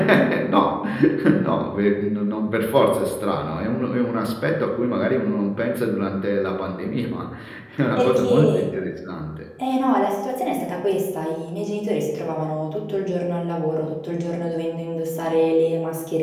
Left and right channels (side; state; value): both; identical; correlation 1.00